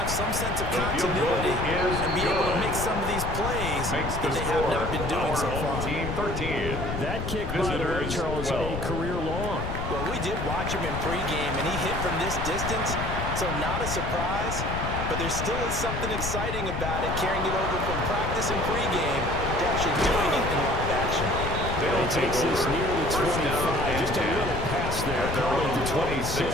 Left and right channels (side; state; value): left; noise; rumble, 4 dB below the sound